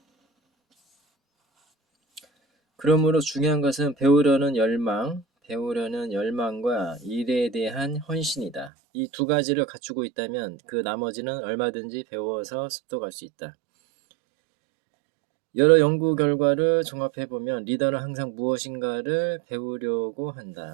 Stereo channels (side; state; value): left; drops out; at 8.7 s